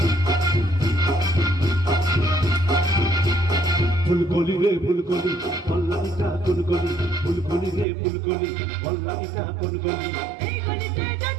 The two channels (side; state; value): left; drops out; at 7.9 s